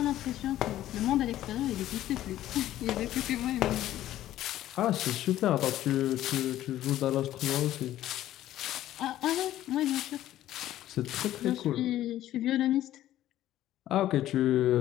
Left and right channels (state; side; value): quieter; right; 13.5 dB